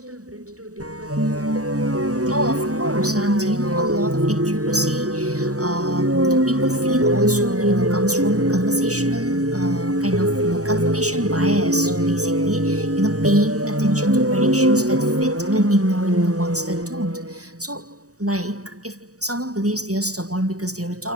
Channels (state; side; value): late; left; 0.66 ms